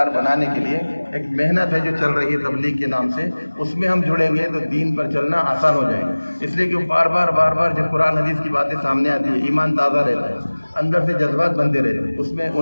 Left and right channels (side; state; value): both; inverted; correlation -1.00